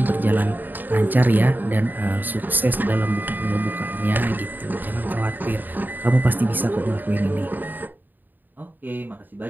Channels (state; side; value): late; left; 0.089 ms